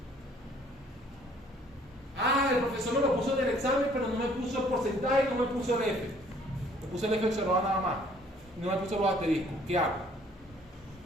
Ah, el profesor me lo puso en el examen, pero no me puso el porcentaje y no me puso el F. Me puso el F observado nada más. No me puso los asteriscos. ¿Qué hago?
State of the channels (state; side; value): normal; both; correlation 0.59